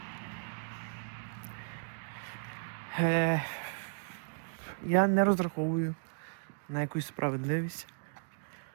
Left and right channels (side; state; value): left; silent; digital silence